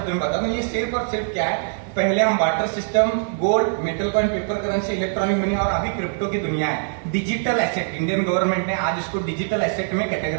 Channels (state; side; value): silent; left; digital silence